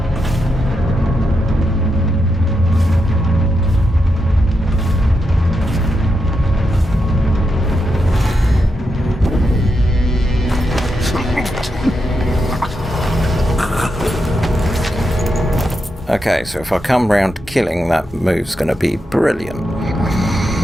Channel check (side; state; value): both; normal; correlation 0.85